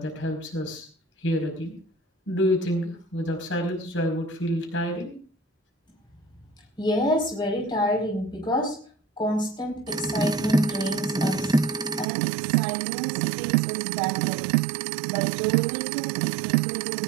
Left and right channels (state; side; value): drops out; left; at 12.1 s